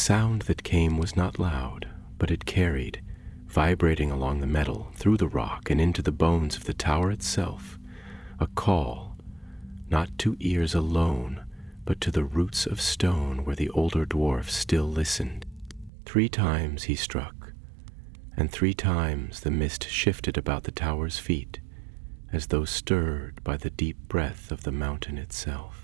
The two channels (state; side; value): drops out; left; at 15.9 s